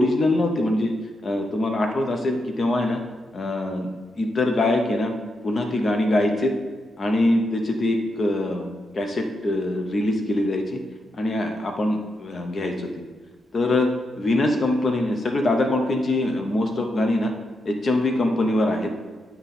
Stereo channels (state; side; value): normal; both; correlation 0.84